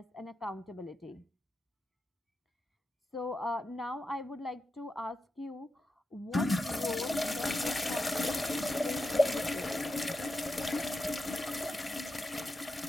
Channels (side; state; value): both; normal; correlation 0.88